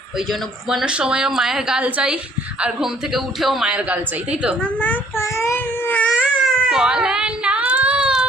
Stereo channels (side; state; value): both; normal; correlation 0.60